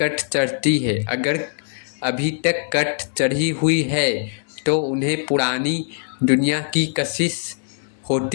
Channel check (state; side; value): silent; right; digital silence